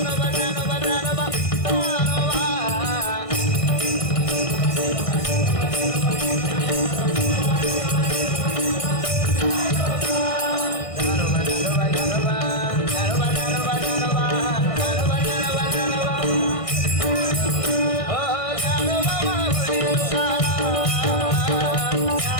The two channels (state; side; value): late; right; 1.6 ms